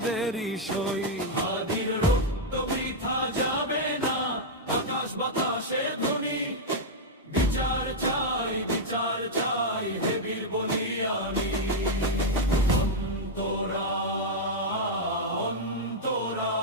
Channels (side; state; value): both; normal; correlation -0.03